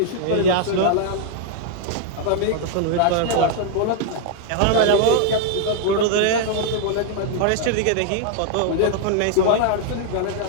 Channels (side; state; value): both; different; correlation 0.00